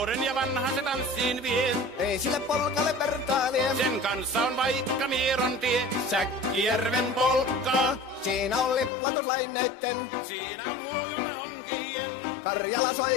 ja vanhan se tanssiin vie. Ei sille polkalle vertailie. Sen kanssa on vaikka Mieron tie. Säkkijärven polkkaa. Siinä on liplatuslaineitten. Siinä on huojunta honkien. Karjala soi,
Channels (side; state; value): right; drops out; at 8.9 s